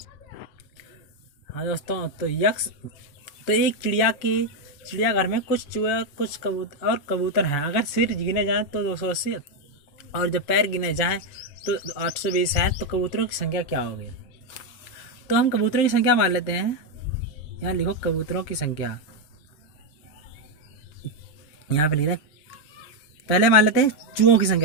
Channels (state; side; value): late; right; 7.0 ms